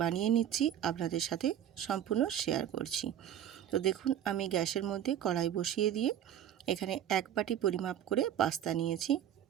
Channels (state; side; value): quieter; left; 10.4 dB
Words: বানিয়ে নিচ্ছি আপনাদের সাথে সম্পূর্ণ শেয়ার করছি। তো দেখুন, আমি গ্যাসের মধ্যে কড়াই বসিয়ে দিয়ে এখানে 1 বাটি পরিমাপ করে পাস্তা নিয়েছি।